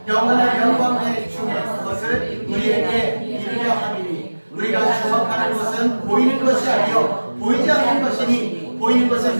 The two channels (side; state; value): both; inverted; correlation -1.00